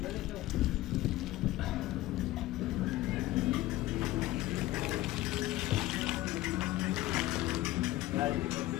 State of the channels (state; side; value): quieter; right; 16.5 dB